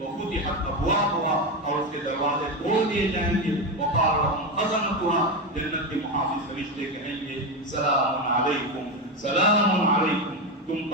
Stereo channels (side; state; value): both; normal; correlation 0.14